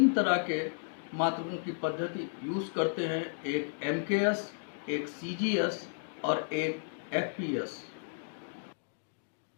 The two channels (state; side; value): silent; right; digital silence